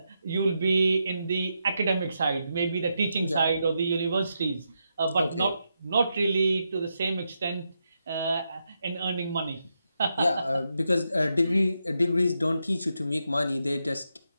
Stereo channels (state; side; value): inverted; both; correlation -0.84